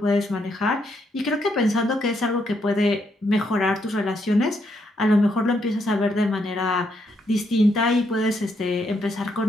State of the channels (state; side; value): normal; both; correlation 0.76